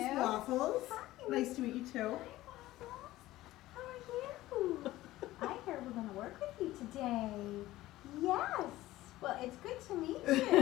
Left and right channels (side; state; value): right; quieter; 16.4 dB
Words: Waffles. Hi. Nice to meet you too. How are you? I heard we're going to work with you today. Yes. Well, it's good to meet